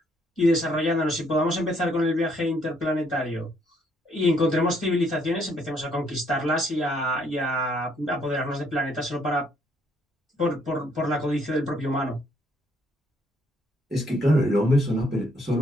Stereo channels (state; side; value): normal; both; correlation 0.69